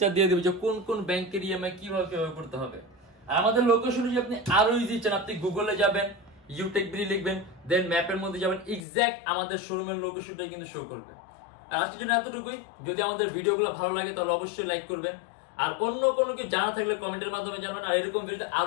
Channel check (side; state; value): right; drops out; at 8.8 s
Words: দিয়ে দেবো যে কোন কোন ব্যাংকের ইএমআই কিভাবে করতে হবে। আর আমাদের লোকেশন যদি আপনি আরো ইজি চান, আপনি গুগলে যাবেন, ইউটেকবিডি লিখবেন, দেন ম্যাপের মধ্যে যাবেন, এক্সাক্ট আমাদের শোরুমের লোকেশনটা কিন্তু শো করবে। আর আজকের জন্য এতটুকুই। যদি আমাদের ভিডিওগুলো ভালো লাগে তাহলে অবশ্যই লাইক করবেন, আর অন্য কোনো কিছু জানা থাকলে কমেন্টের মাধ্যমে জানাবেন। আর এরকম ভিডিও